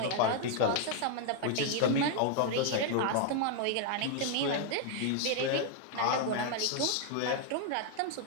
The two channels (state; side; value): different; both; correlation 0.00